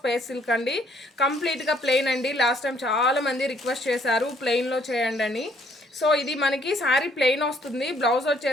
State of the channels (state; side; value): normal; both; correlation 0.65